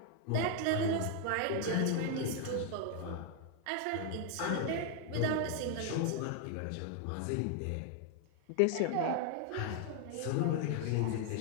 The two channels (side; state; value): both; different; correlation 0.00